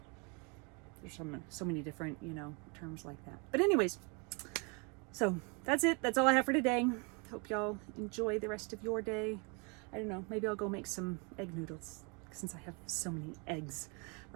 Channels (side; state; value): left; quieter; 32.9 dB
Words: There's so many different, you know, terms like that. But anyways, so that's it. That's all I have for today. Hope y'all enjoy the rest of your day. I don't know, maybe I'll go make some egg noodles since I have so many eggs